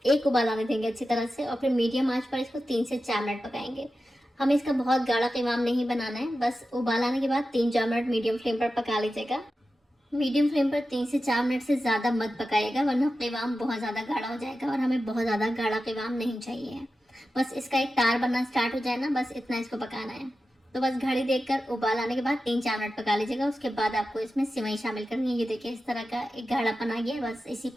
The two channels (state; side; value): normal; both; correlation 0.92